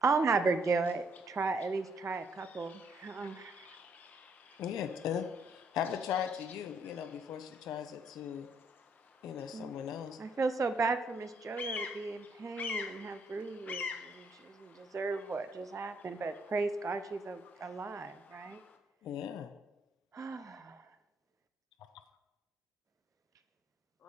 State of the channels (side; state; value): both; normal; correlation 0.70